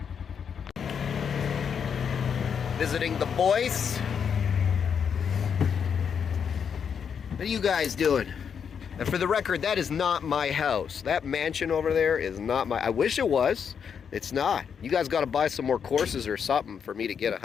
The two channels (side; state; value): right; quieter; 7.1 dB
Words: Visiting the boys. What are you guys doing? And for the record, that is not my house. That mansion over there is not my... I wish it was. It's not. You guys got to buy some more courses or something for me to get a